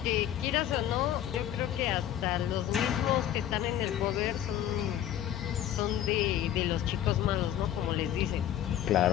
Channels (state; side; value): quieter; right; 11.2 dB